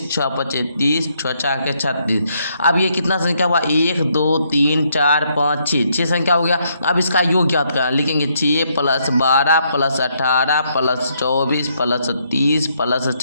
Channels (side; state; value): both; inverted; correlation -0.73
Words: 6 5 30, 6 4 36। अब ये कितना संख्या हुआ, 1 2 3 4 5 6 संख्या हो गया। अब इसका योग ज्ञात करना, लिखेंगे 6 + 12 + 18 + 24 + 30 +